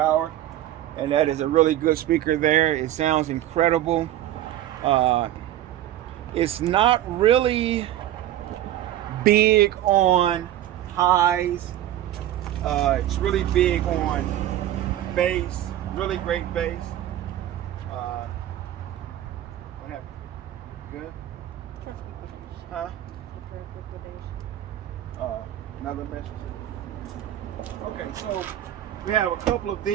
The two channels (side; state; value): left; quieter; 12.9 dB